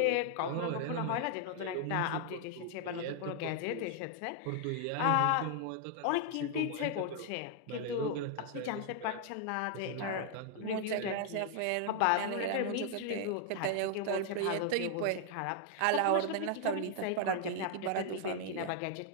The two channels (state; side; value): different; both; correlation 0.00